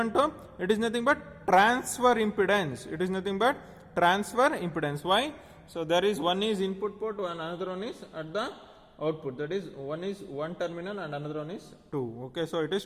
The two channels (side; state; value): both; identical; correlation 1.00